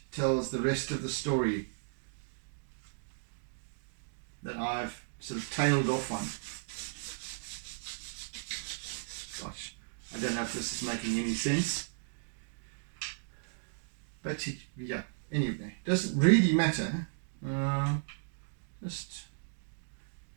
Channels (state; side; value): silent; left; digital silence